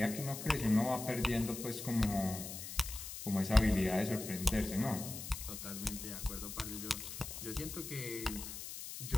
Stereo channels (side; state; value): left; noise; hiss, 8 dB below the sound